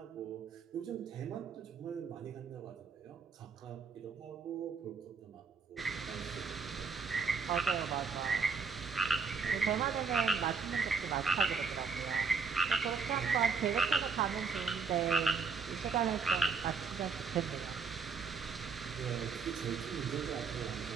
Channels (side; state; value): left; quieter; 5.1 dB